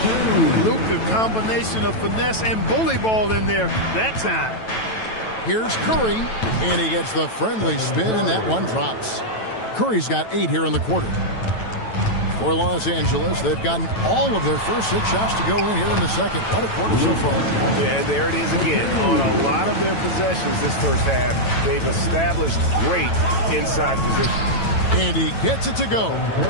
Luka, combination of finesse and bully ball in there that time. Here's Curry, and he gets the friendly spin, and that one drops. Curry's got 8 here in the quarter. For Los Angeles, they've gotten all of their first 6 shots to go in here in the second. What a quarter so far. Yeah, there it is again. On a lot of their possessions this first half, they've established great inside position. And he gets it to go.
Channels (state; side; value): late; right; 9.1 ms